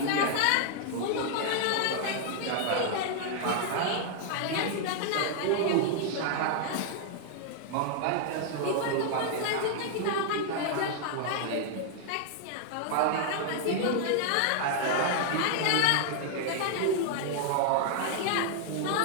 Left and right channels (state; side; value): different; both; correlation 0.00